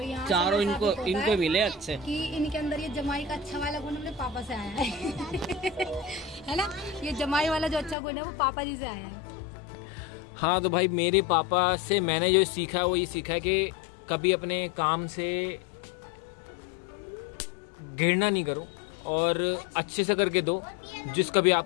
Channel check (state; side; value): drops out; right; at 8.0 s